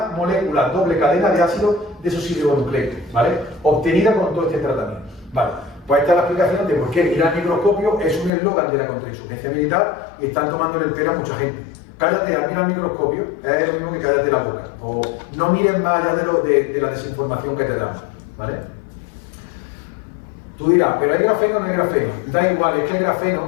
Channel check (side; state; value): right; drops out; at 8.3 s